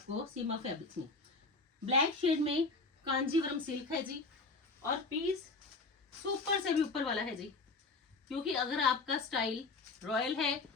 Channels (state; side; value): quieter; right; 3.8 dB